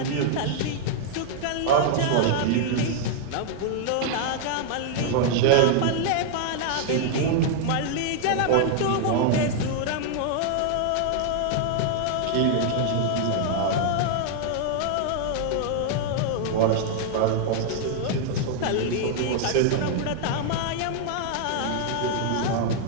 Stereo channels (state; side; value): different; both; correlation -0.01